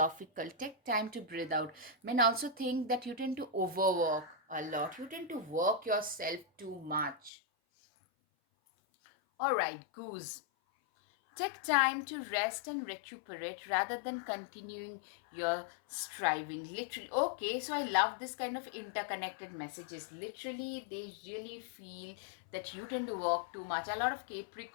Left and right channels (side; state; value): right; drops out; at 7.3 s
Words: Take time to breathe out. Men also think that you tend to overwork a lot, you tend to work yourself too much. All right, goose. Take time to rest and recuperate rather than continuing your striving. Literally, okay, so I love this kind of interconnected messages. Literally, they really feel that you tend to work too much. A lot of